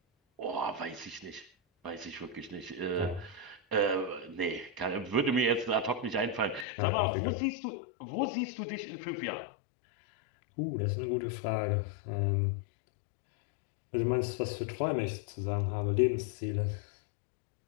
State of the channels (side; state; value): right; drops out; at 6.7 s